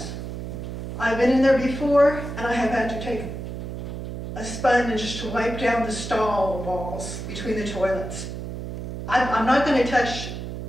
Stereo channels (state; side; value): noise; right; hum, 7 dB below the sound